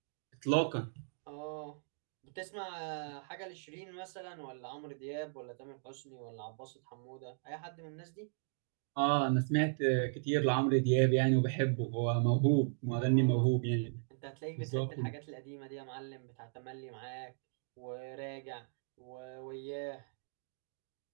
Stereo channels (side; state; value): left; silent; digital silence